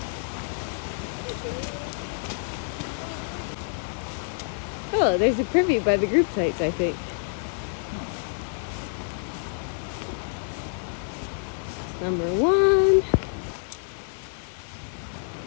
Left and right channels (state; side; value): silent; right; digital silence